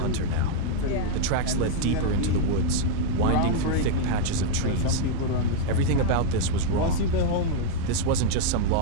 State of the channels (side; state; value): both; different; correlation -0.01